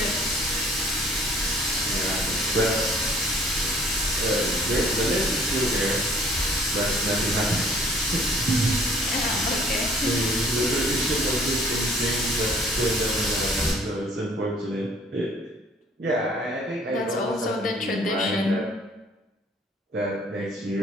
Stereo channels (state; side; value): normal; both; correlation 0.56